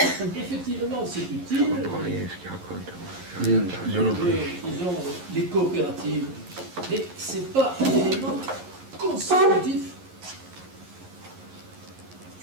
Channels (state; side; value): late; left; 11 ms